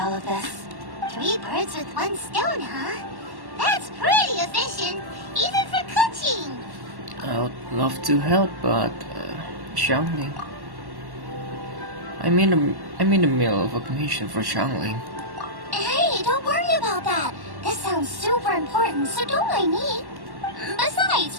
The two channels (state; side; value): late; left; 1.1 ms